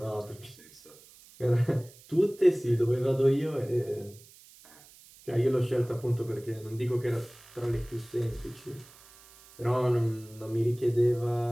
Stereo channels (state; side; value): noise; right; hiss, 23 dB below the sound